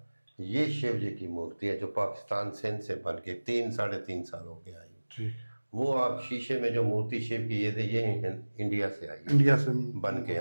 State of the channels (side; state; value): both; inverted; correlation -1.00